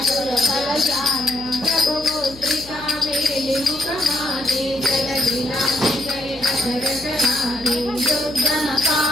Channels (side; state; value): left; noise; hum, 20 dB below the sound